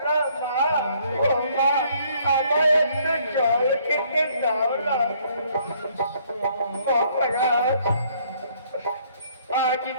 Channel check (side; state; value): both; inverted; correlation -0.64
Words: না মা। ও মা, আমায় একটু জল খেতে দাও না। মহারাজ, আজ